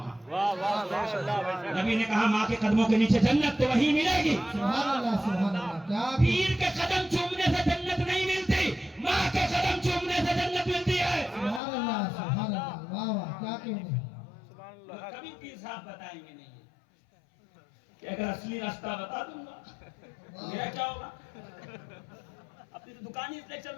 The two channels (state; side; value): drops out; right; at 11.6 s